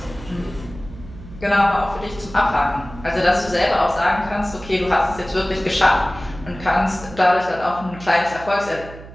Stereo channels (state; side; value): noise; right; hum, 16 dB below the sound